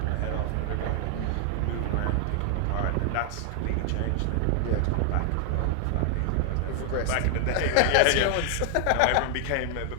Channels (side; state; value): both; different; correlation 0.00